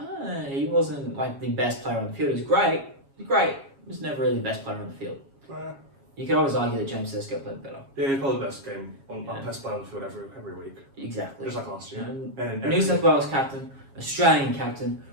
He wasn't like the best player on the field. He was great. He was never really the best player on the field. You could always argue that James Tedesco played better. Yeah, he's probably the best best player on the field every week. Exactly. Just like last year. And New South Wales captain, Australian captain,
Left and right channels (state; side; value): late; left; 7.3 ms